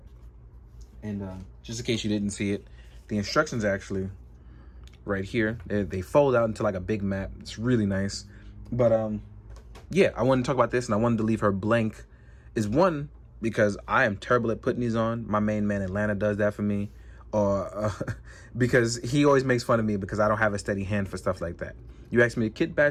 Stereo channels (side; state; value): both; identical; correlation 1.00